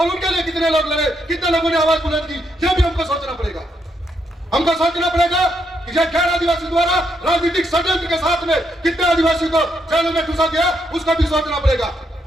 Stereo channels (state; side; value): normal; both; correlation 0.77